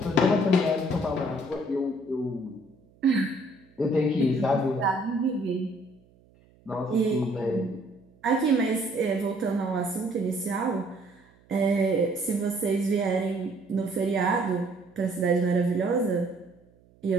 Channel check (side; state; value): right; noise; hum, 30 dB below the sound